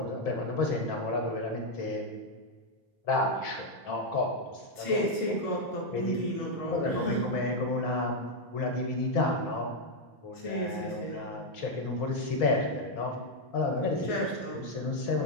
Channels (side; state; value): right; late; 5.0 ms